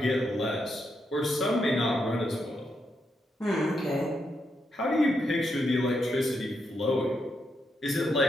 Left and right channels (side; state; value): both; normal; correlation 0.81